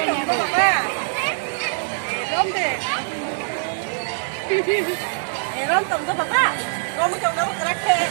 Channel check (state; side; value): silent; left; digital silence